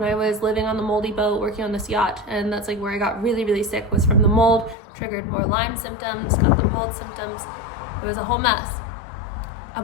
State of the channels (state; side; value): drops out; right; at 4.8 s